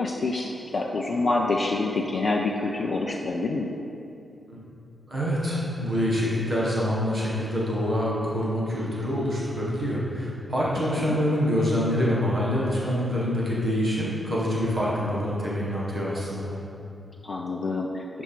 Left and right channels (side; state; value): both; normal; correlation 0.74